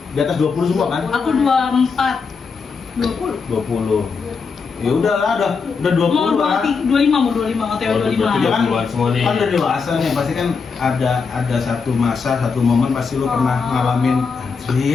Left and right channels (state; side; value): quieter; right; 5.2 dB